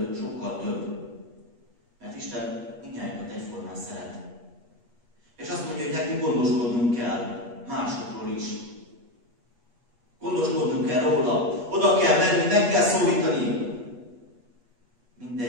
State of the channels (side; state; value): left; late; 8.3 ms